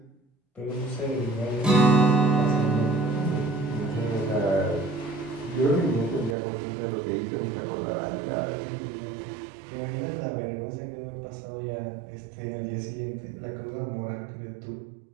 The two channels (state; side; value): drops out; left; at 6.4 s